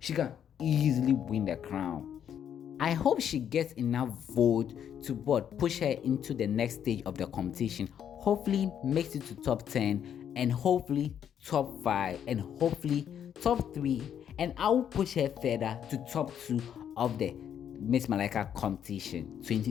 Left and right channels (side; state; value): right; quieter; 9.1 dB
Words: I hope she gets enough vote to push her into the next stage of the competition. Hopefully makes it to top 10, and hopefully top 5, and hopefully top 3, and I will push her further to top 2 of the Miss Malaika competition